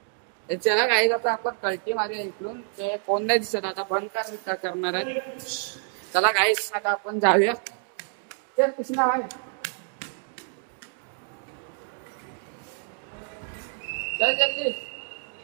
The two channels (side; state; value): left; silent; 60 dB below the other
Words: चला गाईज आता आपण कल्टी मारूया इकडून. ते कोण नाही दिसत आता. बंद करणार आहे. चला गाईज आता आपण जाऊया. चल कृष्णा भाई चल जल्दी.